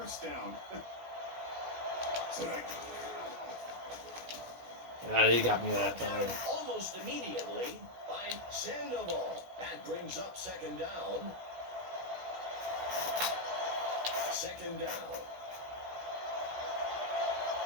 down. They got me that time. Almost immediately by Sandoval. That brings up second down. Second down.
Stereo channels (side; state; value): left; late; 16 ms